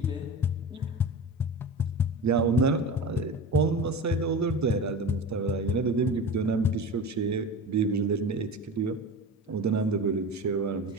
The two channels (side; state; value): both; normal; correlation 0.30